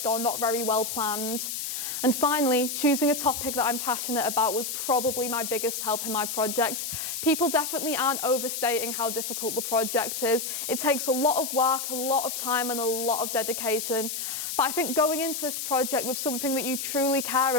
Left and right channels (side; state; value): left; noise; hiss, 4 dB below the sound